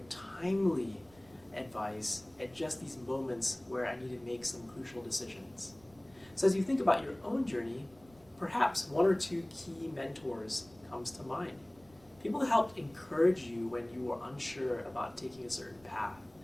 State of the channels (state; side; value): noise; right; rumble, 27 dB below the sound